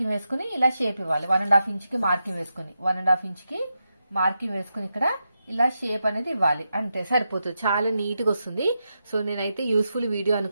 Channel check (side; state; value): both; inverted; correlation -0.87